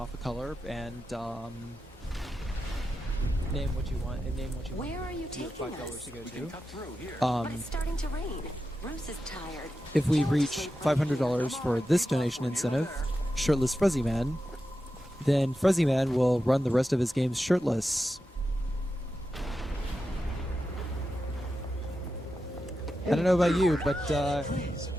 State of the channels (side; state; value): both; normal; correlation 0.90